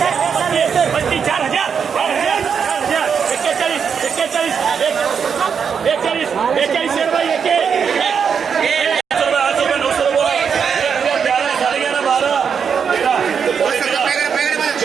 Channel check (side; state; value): left; quieter; 6.7 dB